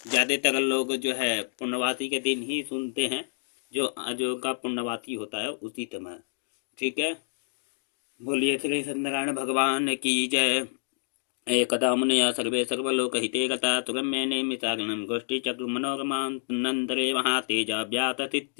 ज़्यादातर लोग जो है पूर्णवासी के दिन ही सुनते हैं, जो का पूर्णवासी होता है उसी समय। ठीक है। बोलिए श्री सत्यनारायण भगवान की जय। एकदा मुनयः सर्वे सर्वलोकहिते गता तुरम्येने मिताग्नं गोष्ठीचक्रमनोरमान्तरे महातेजा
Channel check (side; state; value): right; silent; digital silence